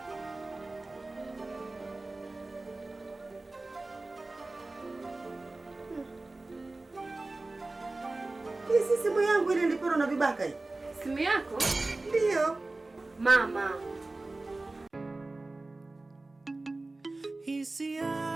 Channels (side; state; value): left; quieter; 3.1 dB